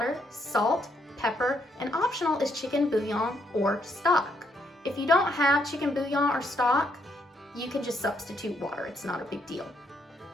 salt, pepper, and optional is chicken bouillon or stock. If you don't have chicken bouillon or stock, you can just substitute water. It's not a big deal.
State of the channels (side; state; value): both; normal; correlation 0.73